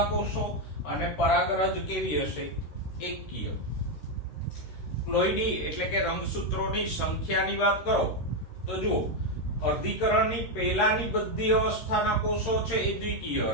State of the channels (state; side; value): late; right; 13 ms